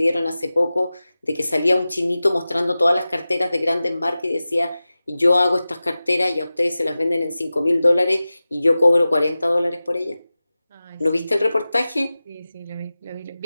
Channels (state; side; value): inverted; both; correlation -0.96